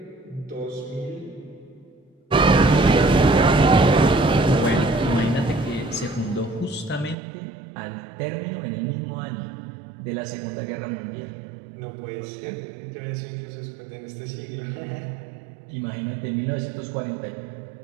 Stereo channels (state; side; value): drops out; left; at 7.2 s